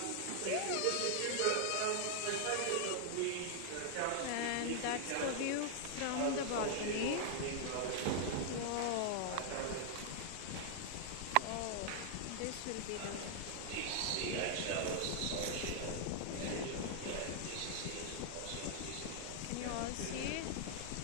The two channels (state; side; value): different; both; correlation 0.00